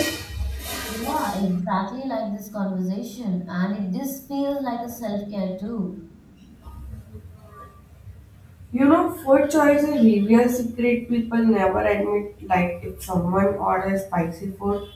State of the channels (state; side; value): identical; both; correlation 1.00